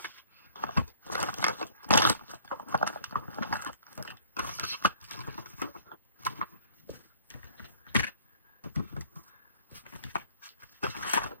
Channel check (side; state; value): both; inverted; correlation -0.55